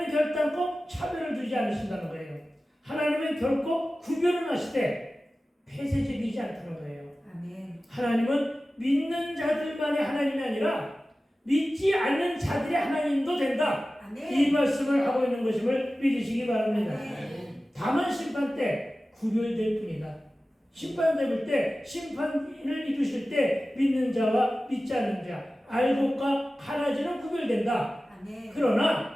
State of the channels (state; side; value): normal; both; correlation 0.96